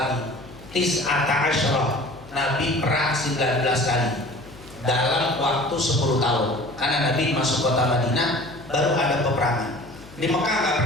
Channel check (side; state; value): left; noise; hum, 20 dB below the sound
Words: Tis'ata asyrah. Nabi perang 19 kali dalam waktu 10 tahun. Karena Nabi masuk kota Madinah baru ada peperangan. Di Mekah nggak